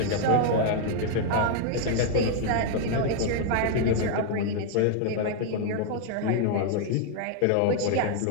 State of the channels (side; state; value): both; different; correlation 0.00